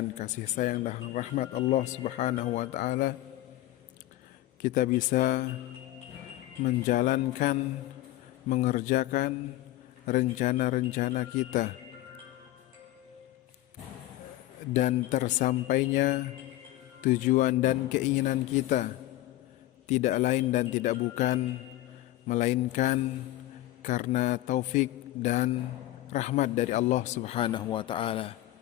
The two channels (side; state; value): right; quieter; 15.6 dB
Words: kasih sayang dan rahmat Allah subhanahu wa ta'ala kita bisa menjalankan, mengerjakan rencana-rencana kita, dan tersampainya tujuan dan keinginan kita tidak lain dan tidak bukan melainkan karena taufik dan rahmat dari Allah subhanahu wa ta'ala.